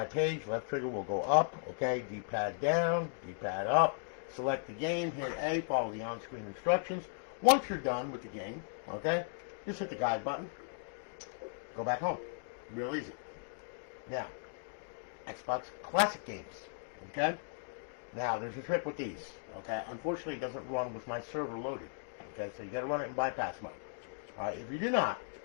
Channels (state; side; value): silent; right; digital silence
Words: page. Left trigger will go up. Okay, D-pad down, D-pad up. Select the game, hit A, follow the on-screen instructions. Once you're done with the game, okay, just hit the guide button. Go back home. Real easy. Now, Xbox Classic games. Okay? Now, there's a trick with these. Okay? Unfortunately, it doesn't run with my server loaded. Okay? So you got to run it in bypass mode. Alright, if you do not,